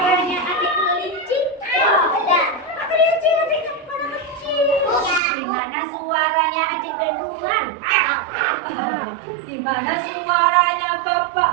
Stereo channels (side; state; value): left; drops out; at 5.2 s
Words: adik kelinci? Kelinci adik kepala kecil. Gimana suaranya adik beruang? Gimana suaranya Bapak